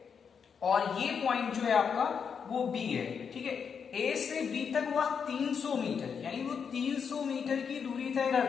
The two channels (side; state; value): right; quieter; 6.6 dB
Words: और ये पॉइंट जो है आपका वो बी है। ठीक है, ए से बी तक वह 300 मीटर, यानी वो 300 मीटर की दूरी तय